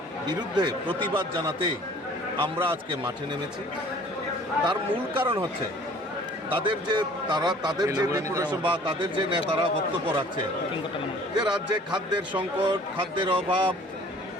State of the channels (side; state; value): both; normal; correlation 0.51